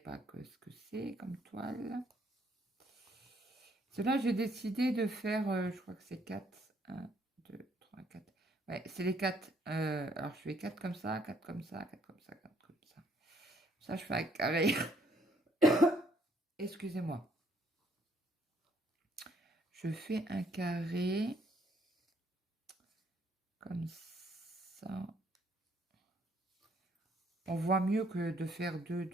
ce que c'est comme toile. Cela, j'ai décidé de faire, je crois que c'est 4. 1, 2, 3, 4. Ouais, c'est les 4. Alors, je fais 4 comme ça, 4 comme ça, 4 comme ça, 4 comme ça. Ça, je fais un carré. Excusez-moi. Je fais un carré comme ça. On voit mieux que de faire 2,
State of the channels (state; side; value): normal; both; correlation 0.66